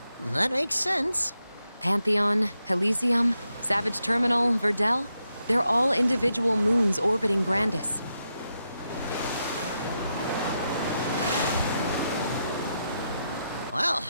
That makes sense. Pantheon, Elysium, Savage Terminal, Verdel, they're all individual moons orbiting Grandis. Well,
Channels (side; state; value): both; inverted; correlation -0.85